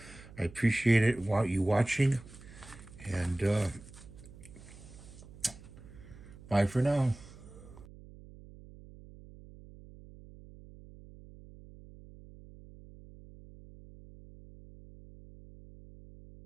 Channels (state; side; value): noise; right; hum, 18 dB below the sound